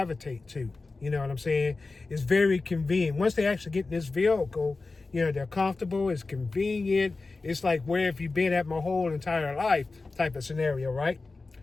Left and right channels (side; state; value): right; quieter; 3.7 dB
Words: to. You know what I'm saying? It's very convenient. Once they actually get in this vehicle, they're comfortable, it's convenient. It's like, where have you been at my whole entire life type of scenario, right?